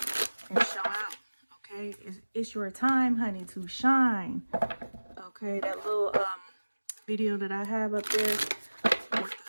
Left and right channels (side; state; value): both; inverted; correlation -1.00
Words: and show out, okay? It's your time, honey, to shine, okay? That little video that I have up there with